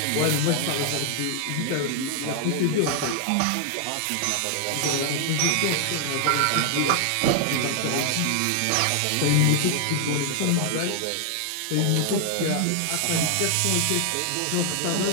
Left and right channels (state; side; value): different; both; correlation 0.00